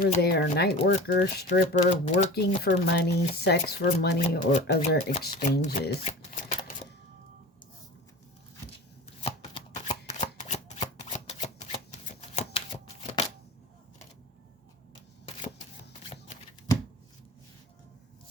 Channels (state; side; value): normal; both; correlation 0.35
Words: there, night worker, stripper, working for money, sex for money, or other exchanges.